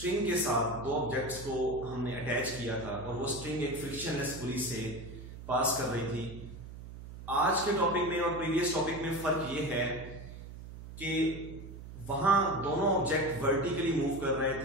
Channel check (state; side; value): noise; right; hum, 13 dB below the sound